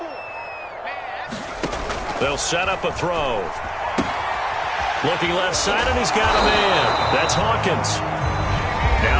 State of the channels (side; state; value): both; identical; correlation 1.00